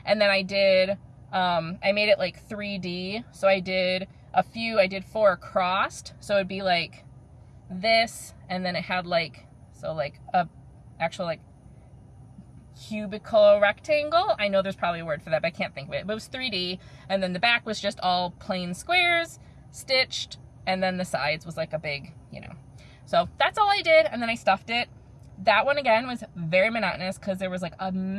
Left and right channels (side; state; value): both; identical; correlation 1.00